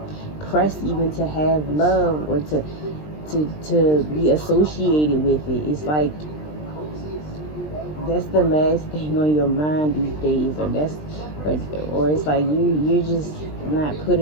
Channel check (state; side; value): late; right; 20 ms